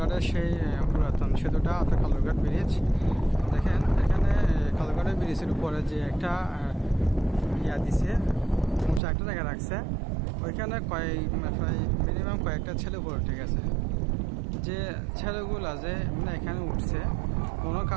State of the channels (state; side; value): drops out; left; at 9.0 s